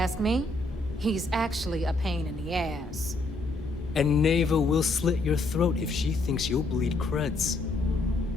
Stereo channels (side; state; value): right; quieter; 3.1 dB